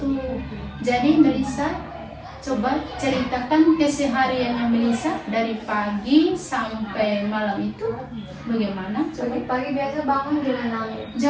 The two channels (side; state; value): both; identical; correlation 1.00